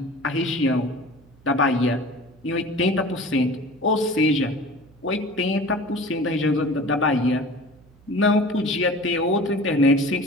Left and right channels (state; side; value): noise; right; hum, 28 dB below the sound